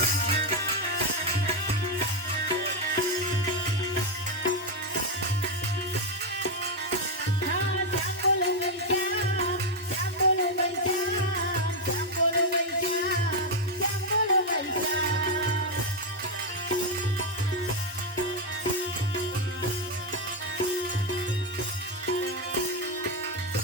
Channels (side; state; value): both; normal; correlation 0.04